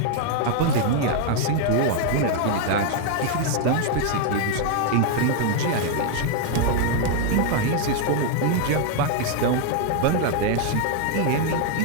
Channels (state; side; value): different; both; correlation 0.00